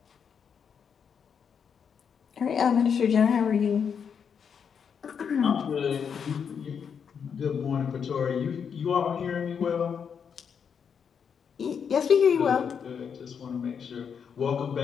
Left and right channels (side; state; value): right; quieter; 7.0 dB